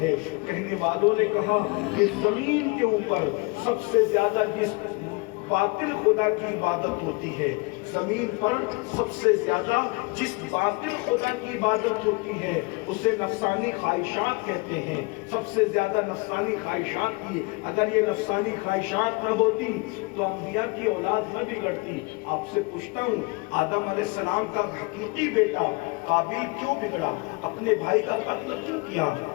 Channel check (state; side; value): quieter; right; 27.4 dB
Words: ہے۔ کہنے والوں نے کہا کہ زمین کے اوپر سب سے زیادہ جس باطل خدا کی عبادت ہوتی ہے، زمین پر سب سے زیادہ جس باطل خدا کی عبادت ہوتی ہے اسے نفسانی خواہشات کہتے ہیں۔ سب سے زیادہ نفسانی خواہشات کی، اگر یہ نفسانی خواہشات نہ ہوتی تو انبیاء کی اولاد نہ بگڑتی۔ آپ سے پوچھتا ہوں، آدم علیہ السلام کا حقیقی بیٹا قابیل کیوں بگڑا؟ اپنے بھائی کا قتل کیوں کیا؟